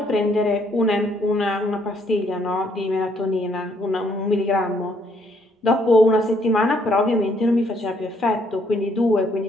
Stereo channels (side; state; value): both; normal; correlation 0.69